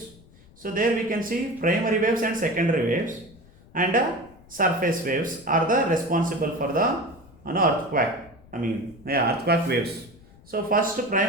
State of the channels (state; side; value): noise; left; rumble, 25 dB below the sound